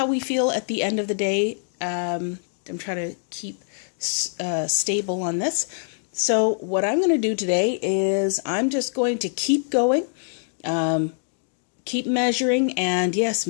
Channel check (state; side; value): silent; right; digital silence